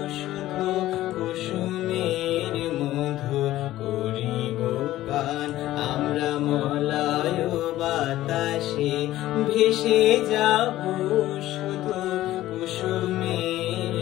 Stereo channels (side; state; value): right; quieter; 15.0 dB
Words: শুধু কুসুমের মধু করিব পান। আমরা মলয় বাতাসে ভেসে যাব